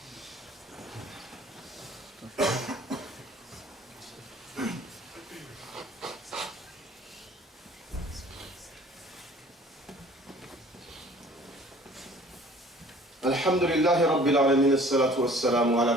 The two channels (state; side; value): normal; both; correlation 0.51